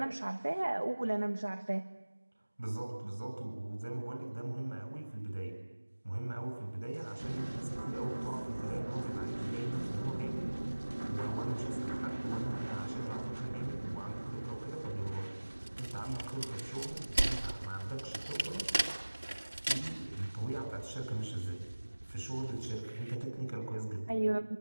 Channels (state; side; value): inverted; both; correlation -1.00